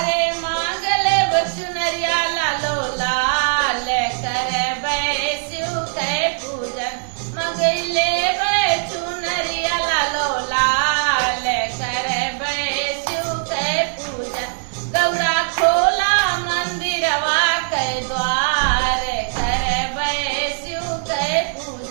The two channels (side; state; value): left; silent; digital silence